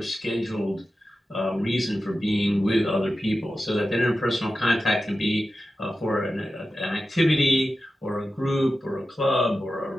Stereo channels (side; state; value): both; normal; correlation 0.93